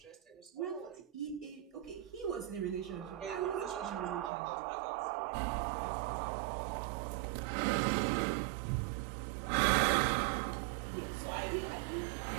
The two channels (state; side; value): drops out; left; at 4.3 s